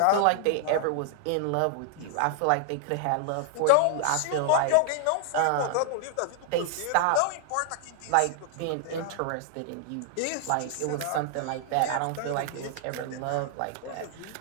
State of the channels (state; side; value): different; both; correlation 0.00